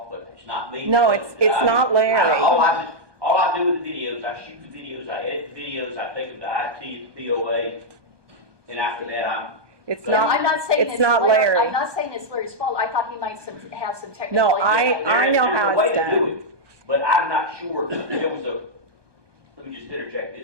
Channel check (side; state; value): left; late; 1.2 ms